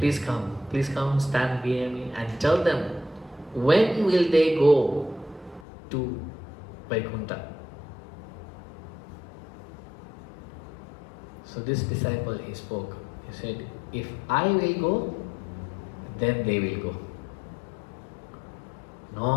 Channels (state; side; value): drops out; right; at 5.7 s